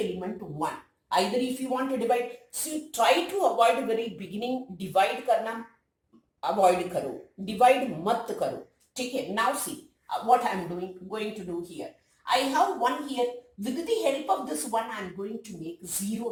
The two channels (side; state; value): both; identical; correlation 1.00